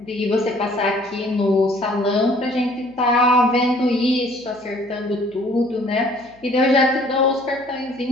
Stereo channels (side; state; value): left; noise; hum, 30 dB below the sound